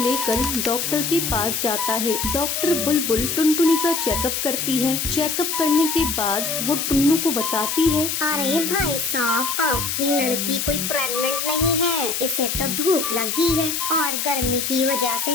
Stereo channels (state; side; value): noise; left; hiss, 1 dB below the sound